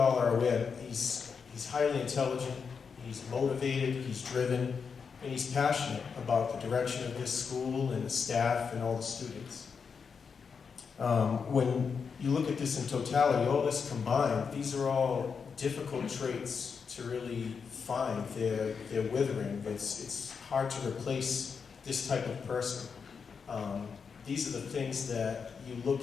are aware he's highly intelligent, he's motivated, he's driven, and he's passionate about the direction of this school and the staff and all the students. When you look at this in totality, all this combined, these are all difficult traits to really find. They're withering. It's hard to replace this type of person. These are the things that you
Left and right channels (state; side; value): quieter; right; 5.9 dB